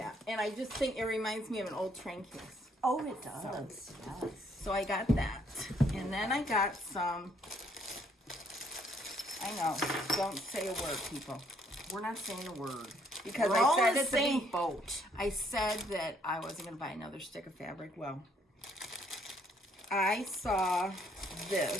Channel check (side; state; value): both; normal; correlation 0.67